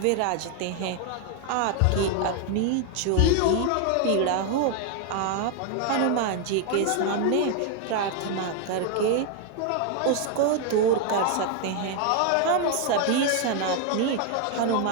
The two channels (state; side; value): different; both; correlation 0.00